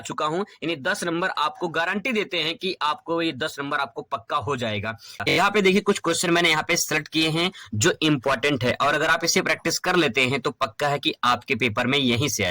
चुका हूं। यानी 10 नंबर आपको गारंटी देते हैं कि आपको ये 10 नंबर आपको पक्का हो जाएगा। यहाँ पे देखिए कुछ क्वेश्चन मैंने यहाँ पे सेलेक्ट किए हैं जो इंपॉर्टेंट है और अगर आप इसे प्रैक्टिस कर लेते हैं तो पक्का है कि आपके पेपर में यहीं से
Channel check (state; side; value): identical; both; correlation 1.00